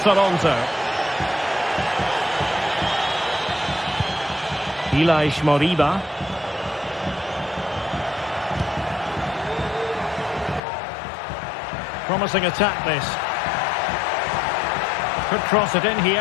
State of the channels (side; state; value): right; drops out; at 10.6 s